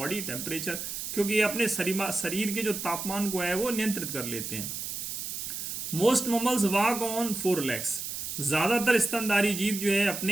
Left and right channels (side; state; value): right; noise; hiss, 5 dB below the sound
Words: temperature, क्योंकि ये अपने शरीर के जो तापमान को है वो नियंत्रित कर लेते हैं। Most mammals walk on 4 legs। ज्यादातर स्तनधारी जीव जो है